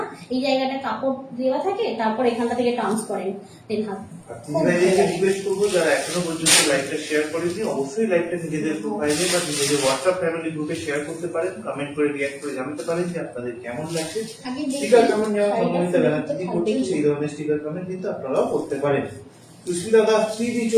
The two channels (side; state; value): both; identical; correlation 1.00